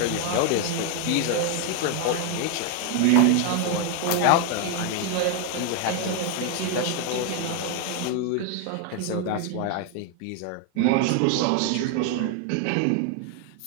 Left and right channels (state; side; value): different; both; correlation 0.01